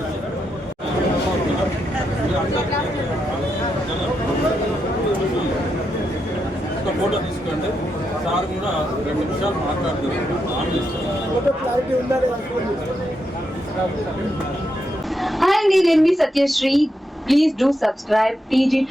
ఒక ఫోటో తీసుకోండి. సార్ కూడా 2 నిమిషాలు మాట్లాడుతున్నారు. Hi, నేను మీ Satyasri. Please do subscribe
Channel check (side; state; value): both; normal; correlation 0.83